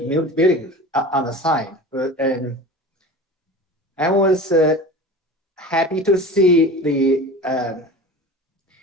new building on the side. And I was happy to see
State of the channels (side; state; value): both; normal; correlation 0.35